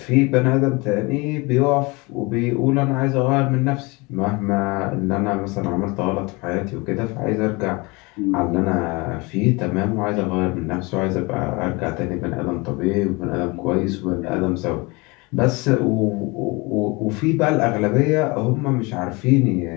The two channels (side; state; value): right; quieter; 26.0 dB